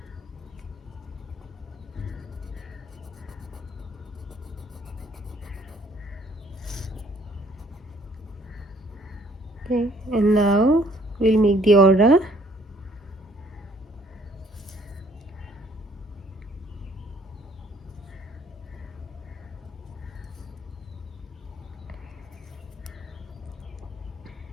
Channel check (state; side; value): normal; both; correlation 0.62